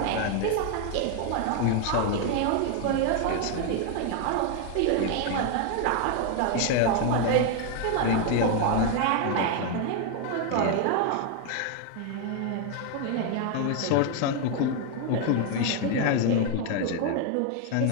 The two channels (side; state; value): both; different; correlation 0.01